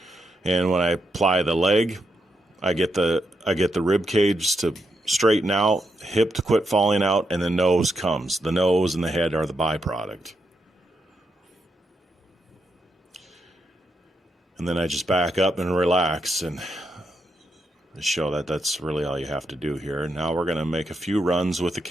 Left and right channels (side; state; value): both; normal; correlation 0.82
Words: And when I apply the leg, I get the rib cage to straighten out, hip to quit falling out, and the nose comes. The nose and the head are the byproduct. And then I just back up and relax and show that that's really all you have to do here. Now we're going to make a few runs with the